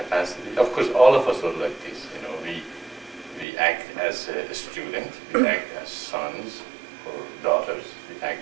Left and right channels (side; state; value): left; drops out; at 3.5 s